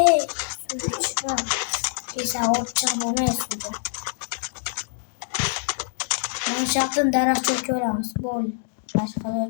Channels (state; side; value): silent; right; digital silence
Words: Suv kesa o't chiqib olmaydi. Mana shu yerdan daraxt cho'kib olamiz. Bo'ldi. Boshqa